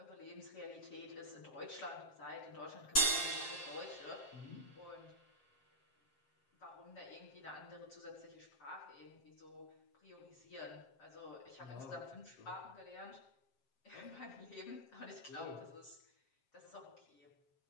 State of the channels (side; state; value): right; late; 7.5 ms